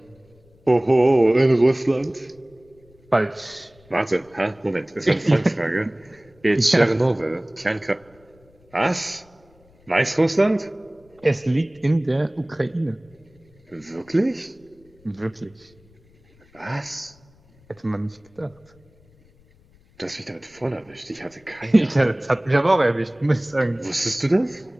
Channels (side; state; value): left; noise; rumble, 30 dB below the sound